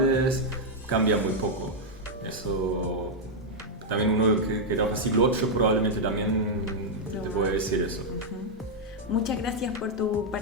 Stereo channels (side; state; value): both; normal; correlation -0.03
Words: cambia muy poco. Eso también uno que era del siglo VIII probablemente también te puede decir eso. Muchas gracias por tu